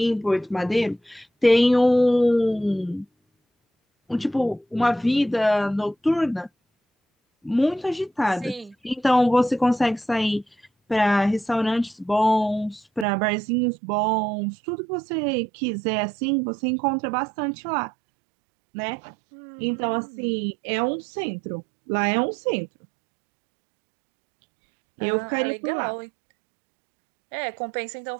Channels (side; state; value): left; drops out; at 13.1 s